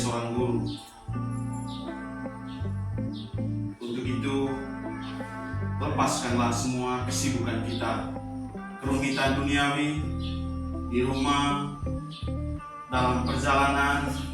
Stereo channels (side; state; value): both; identical; correlation 1.00